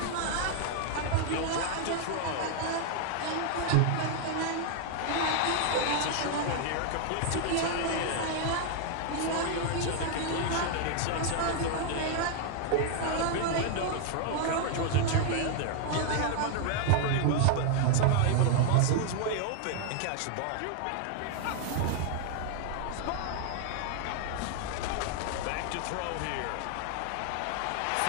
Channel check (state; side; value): different; both; correlation 0.00